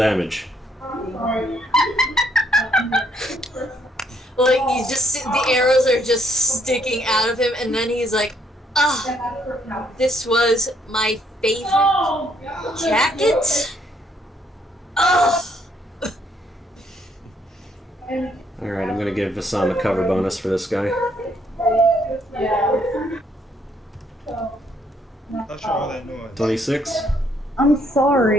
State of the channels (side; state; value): both; normal; correlation 0.70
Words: Like, you just see the arrows are just sticking out of him, and then he's like, ah, this was my favorite jacket? Ugh. Alright, I'm gonna give Vassam a cover bonus for this guy. Not sure all that noise. 26. I'm